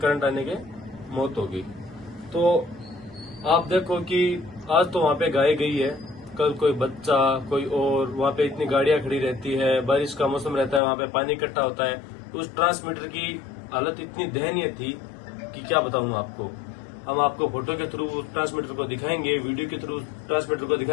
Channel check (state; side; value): drops out; right; at 10.8 s